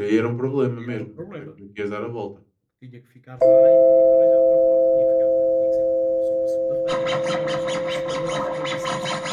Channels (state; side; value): identical; both; correlation 1.00